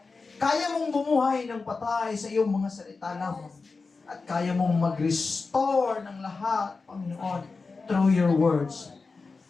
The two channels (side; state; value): right; quieter; 4.2 dB